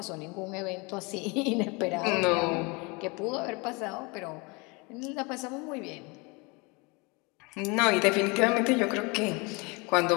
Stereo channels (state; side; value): quieter; right; 28.2 dB